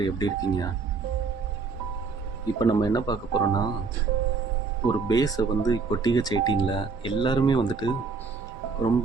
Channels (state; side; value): quieter; left; 4.7 dB